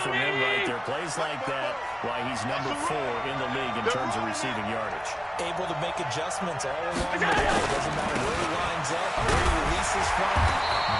from him right there. Plays like that, why he's number 4 in the league in terms of receiving yardage. Able to make adjustments all along the way. It doesn't matter where he lines up, where he releases from.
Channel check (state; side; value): identical; both; correlation 1.00